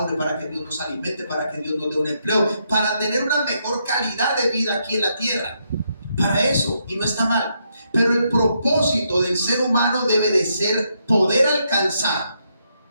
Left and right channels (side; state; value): both; inverted; correlation -0.78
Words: para que Dios nos alimente, para que Dios nos dé un empleo, para tener una mejor calidad de vida aquí en la tierra. Para eso, y no está mal. Pero el propósito del ser humano debe de ser poder alcanzar